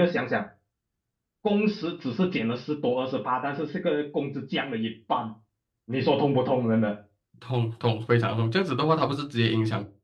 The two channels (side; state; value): both; identical; correlation 1.00